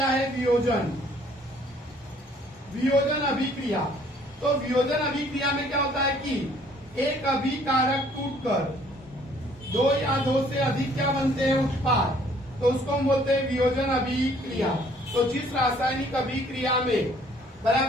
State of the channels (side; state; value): both; normal; correlation 0.60